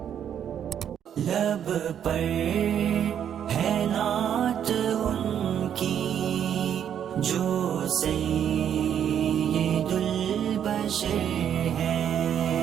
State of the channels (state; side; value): quieter; left; 9.2 dB